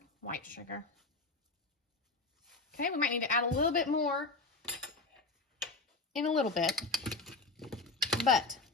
white sugar. Okay, we might need to add a little bit more in a little bit, but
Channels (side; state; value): right; quieter; 3.6 dB